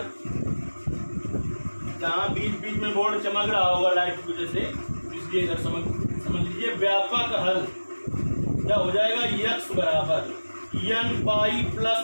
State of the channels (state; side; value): inverted; both; correlation -1.00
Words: जहाँ बीच बीच में बोर्ड चमक रहा होगा लाइट की वजह से, इसलिए इधर समझ लीजिए व्यापक हल क्या हो जाएगा। x बराबर n पाई